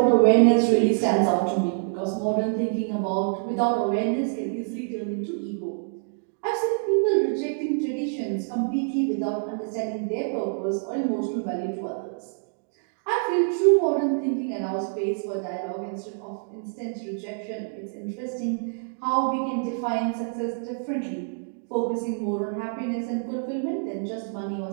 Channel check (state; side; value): silent; left; digital silence